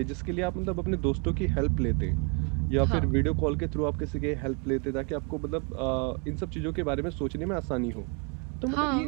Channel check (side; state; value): left; quieter; 35.0 dB